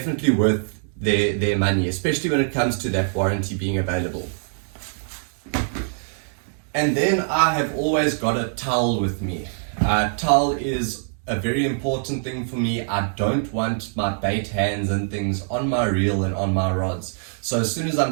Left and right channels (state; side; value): silent; left; digital silence